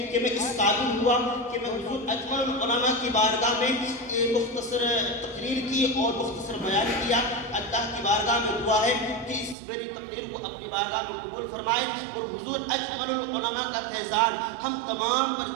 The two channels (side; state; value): left; drops out; at 9.6 s